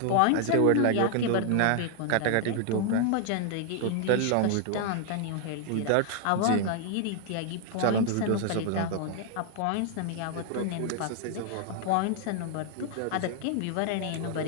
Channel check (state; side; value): different; both; correlation 0.00